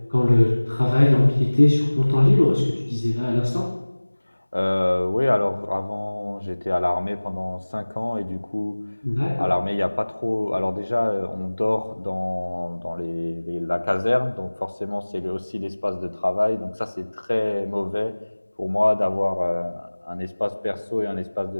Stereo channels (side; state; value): both; inverted; correlation -1.00